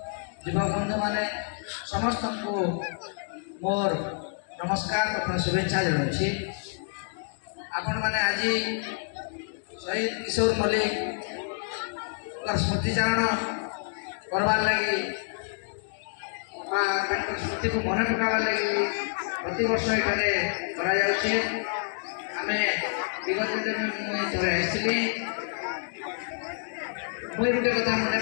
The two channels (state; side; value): silent; right; digital silence